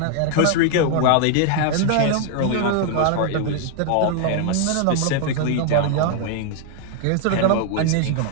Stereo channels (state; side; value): different; both; correlation 0.00